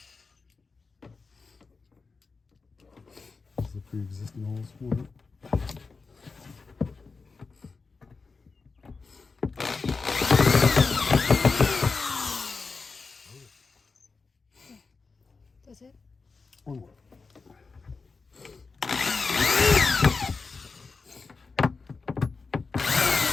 This is the pre-existing holes for it. That's it? One more.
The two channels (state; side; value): quieter; right; 4.4 dB